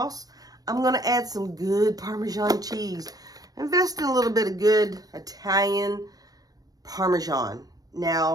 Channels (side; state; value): left; late; 0.18 ms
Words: I'm going to add some good Parmesan cheese. Invest in a little bit of good Italian Parmesan.